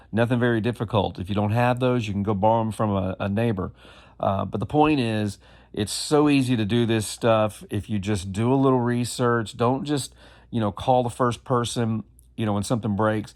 nothing very difficult. If you don't have those, you can go borrow them from a neighbor. But the point is, it's so easy to do this stuff if you just do a little research. Don't just, call the first person, when something breaks.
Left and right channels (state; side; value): identical; both; correlation 1.00